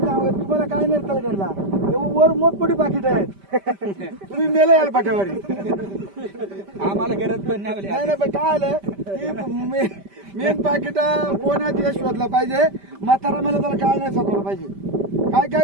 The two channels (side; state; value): left; late; 5.1 ms